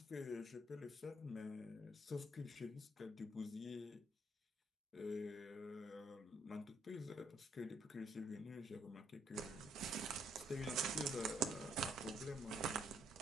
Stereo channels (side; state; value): both; normal; correlation 0.70